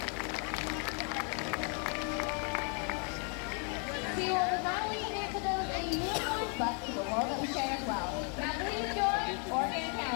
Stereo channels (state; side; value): quieter; right; 39.2 dB